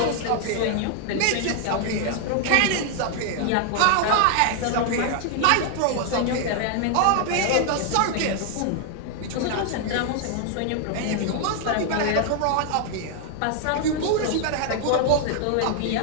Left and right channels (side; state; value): both; different; correlation 0.00